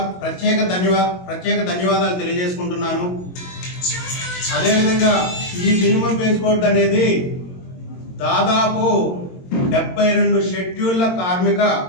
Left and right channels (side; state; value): right; late; 22 ms